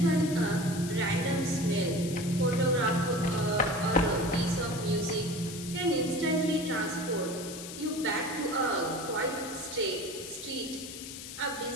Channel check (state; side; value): noise; left; hiss, 11 dB below the sound